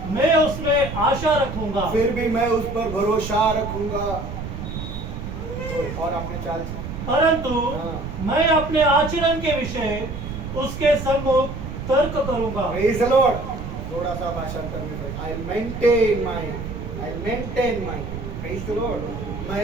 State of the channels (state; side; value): noise; right; rumble, 7 dB below the sound